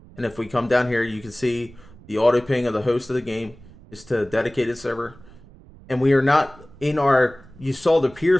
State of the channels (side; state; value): right; noise; rumble, 22 dB below the sound